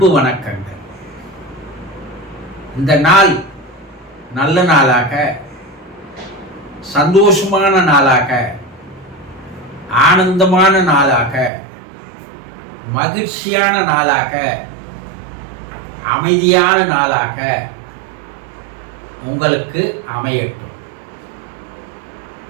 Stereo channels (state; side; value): drops out; left; at 11.5 s